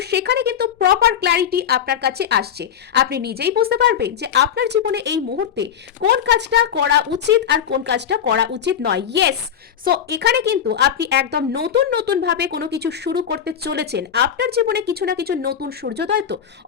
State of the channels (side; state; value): right; quieter; 8.8 dB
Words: সেখানে কিন্তু প্রপার ক্ল্যারিটি আপনার কাছে আসছে। আপনি নিজেই বুঝতে পারবেন যে আপনার জীবনে এই মুহূর্তে কোন কাজটা করা উচিত আর কোন কাজটা করা উচিত নয়। ইয়েস, সো এখানে কিন্তু আপনি একদম নতুন ভাবে কোনো কিছু শুরু করতে চলেছেন। আপনার জীবনে কিছু না কিছু নতুন সূর্যোদয় তো